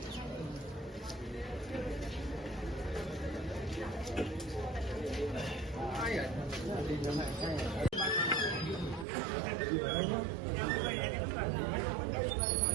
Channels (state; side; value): drops out; left; at 9.1 s